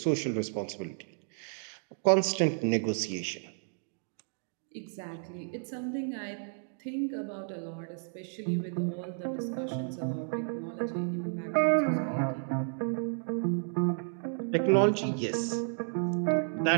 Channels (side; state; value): left; silent; digital silence